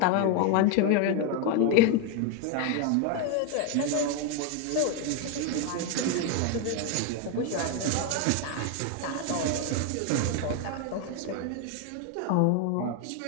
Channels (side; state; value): both; different; correlation 0.01